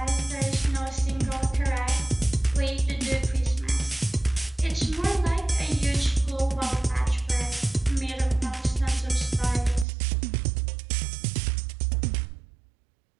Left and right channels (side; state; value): left; drops out; at 9.9 s